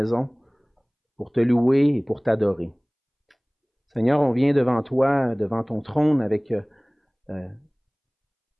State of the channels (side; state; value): both; identical; correlation 1.00